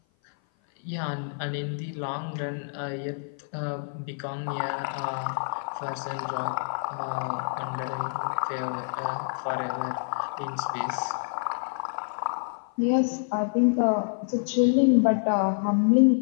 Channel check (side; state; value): right; silent; 55 dB below the other